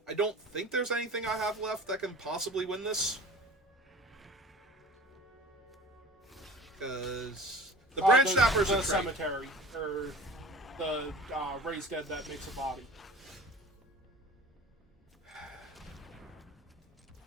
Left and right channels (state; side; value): normal; both; correlation 0.40